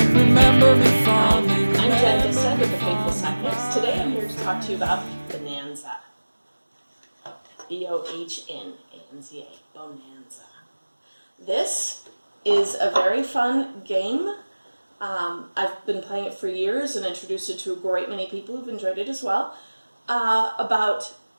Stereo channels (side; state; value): both; inverted; correlation -1.00